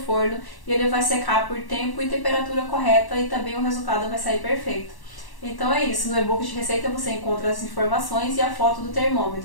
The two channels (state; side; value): late; right; 1.1 ms